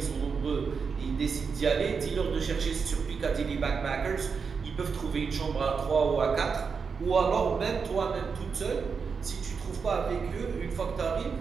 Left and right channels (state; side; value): quieter; left; 5.6 dB